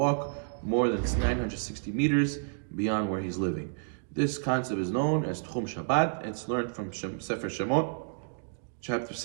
more than 960 meters beyond where he's living. This concept is known as Tchum Shabbat. It's learned from Sefer Shemot, chapter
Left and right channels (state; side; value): silent; left; digital silence